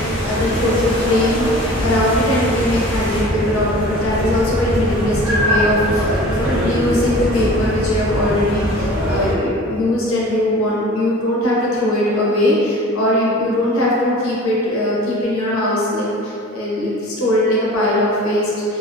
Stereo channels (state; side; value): normal; both; correlation 0.42